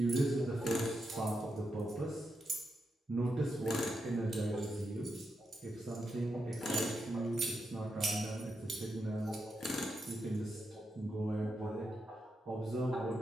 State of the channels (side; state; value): both; normal; correlation 0.85